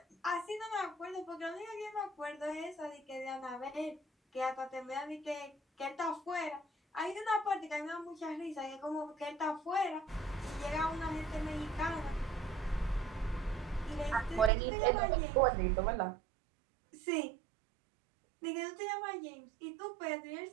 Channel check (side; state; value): left; drops out; at 14.5 s